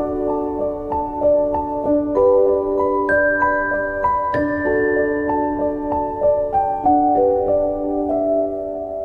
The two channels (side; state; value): both; identical; correlation 1.00